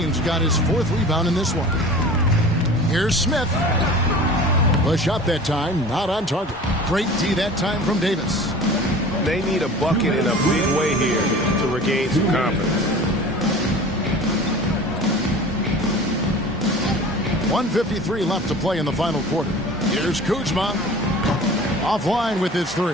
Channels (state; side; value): normal; both; correlation 0.40